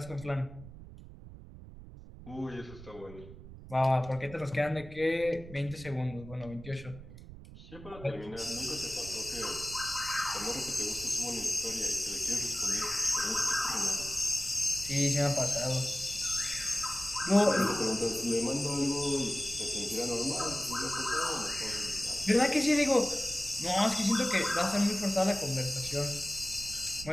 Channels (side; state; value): right; noise; rumble, 16 dB below the sound